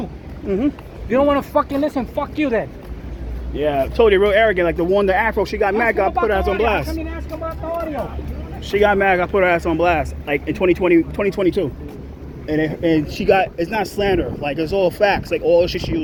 You don't want to fucking listen. Fuck you then. Yeah, I told you real arrogant. Like the Afro, she got mad. Got put her ass on blast. I mean, ask them about the audio. She got mad. Got put her ass on blast. Like in 2022, and she got. It's not slander. Like it's all facts. Like all the shit she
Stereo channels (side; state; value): both; identical; correlation 1.00